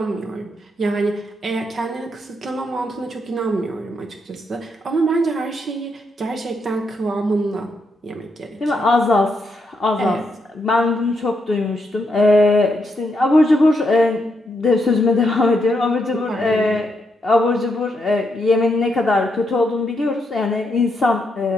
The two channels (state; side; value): normal; both; correlation 0.80